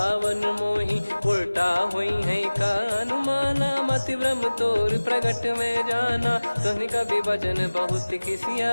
मोहि। उल्टा हुई है का अनुमाना, मति भ्रम तोर प्रगट में जाना। सुन कवि वचन बहुत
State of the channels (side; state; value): both; inverted; correlation -1.00